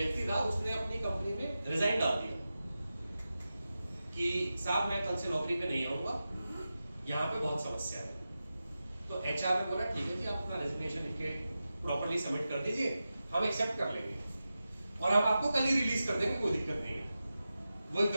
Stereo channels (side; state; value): both; inverted; correlation -0.93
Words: था, उसने अपनी कंपनी में रिजाइन डाल दिया कि साहब मैं कल से नौकरी पे नहीं आऊंगा, यहाँ पे बहुत समस्या है। तो एचआर ने बोला ठीक है जी, आप अपना रेजिग्नेशन लिख के प्रॉपर्ली सबमिट कर दीजिए, हम एक्सेप्ट कर लेंगे और हम आपको कल ही रिलीज कर देंगे, कोई दिक्कत नहीं है। वो